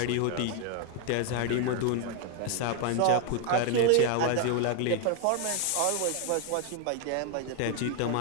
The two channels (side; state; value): both; different; correlation 0.01